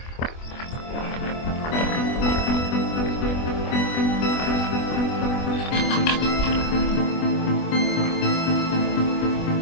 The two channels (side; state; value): right; late; 24 ms